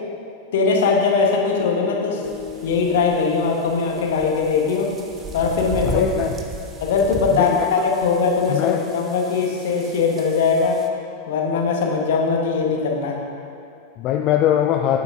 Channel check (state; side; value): quieter; right; 5.0 dB